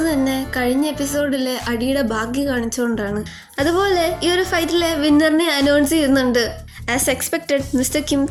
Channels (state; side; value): identical; both; correlation 1.00